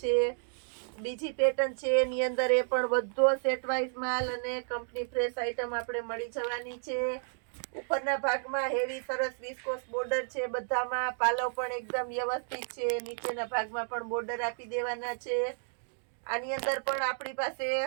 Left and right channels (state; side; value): silent; left; digital silence